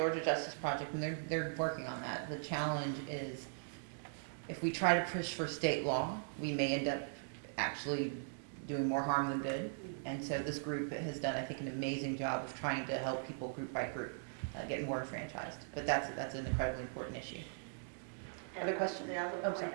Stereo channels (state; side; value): silent; left; digital silence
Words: Justice Project, and they're working on that. The challenge is if we try to push for state law, we may end up actually doing more harm than good. And so this group has done, I think, an amazing job of trying to help people group by group get more enfranchised. But that's an incredibly important issue. Other questions? The other Oh, point sorry.